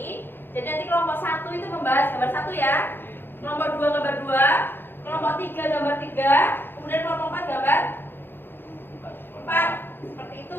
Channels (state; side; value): late; right; 0.10 ms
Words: Jadi nanti kelompok 1 itu membahas gambar 1 ya. Kelompok 2 gambar 2, kelompok 3 gambar 3, kemudian kelompok 4 gambar 4. Seperti